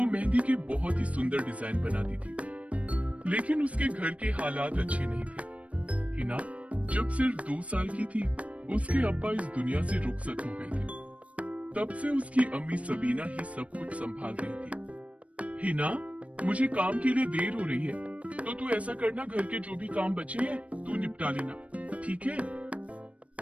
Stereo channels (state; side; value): late; left; 0.065 ms